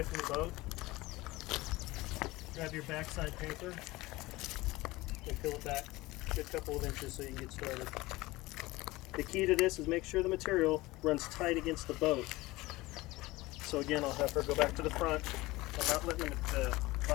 from the boat, grab your backside paper, and peel it back a good couple of inches so you can get started. The key to this is make sure the material runs tight against the boat. So again, I'll have her go back to the front. I'm not letting the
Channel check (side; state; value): right; quieter; 20.1 dB